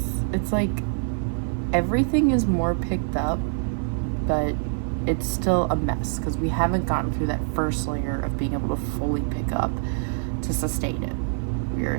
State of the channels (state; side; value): silent; left; 59 dB below the other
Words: it's like everything is more picked up, but it's still a mess because we haven't gotten through that first layer of being able to fully pick up to sustain it. We are